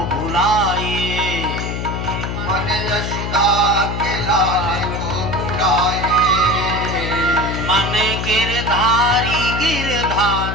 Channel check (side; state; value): left; noise; hum, 4 dB below the sound